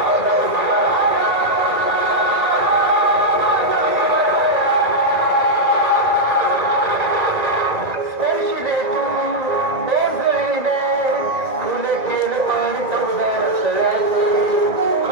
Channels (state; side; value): late; left; 1.9 ms